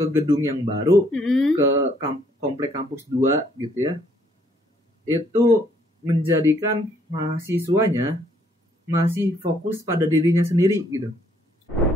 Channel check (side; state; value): both; normal; correlation 0.67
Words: gedung yang baru, ke komplek kampus 2 gitu ya. Itu menjadikan mahasiswanya masih fokus pada dirinya sendiri gitu.